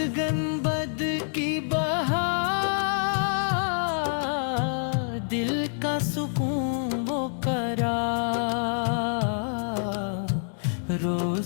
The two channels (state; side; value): silent; right; digital silence